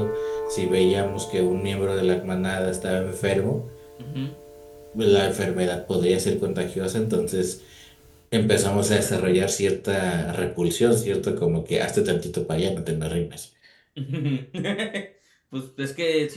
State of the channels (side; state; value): both; identical; correlation 1.00